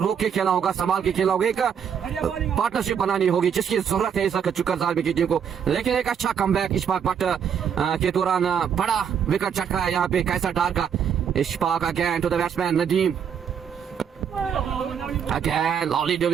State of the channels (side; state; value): left; quieter; 7.8 dB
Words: के खेलना होगा, संभाल के खेलना होगा, एक पार्टनरशिप बनानी होगी जिसकी जरूरत है इस वक्त चुकर जालमी की टीम को। लेकिन एक अच्छा कमबैक इशफाक बट के दौरान बड़ा विकेट चटका है यहाँ पे कैसर डार का। Ishfaq again to the batsman Nadeem. Again, lovely